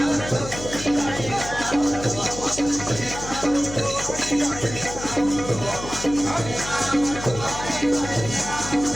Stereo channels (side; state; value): left; noise; hum, 10 dB below the sound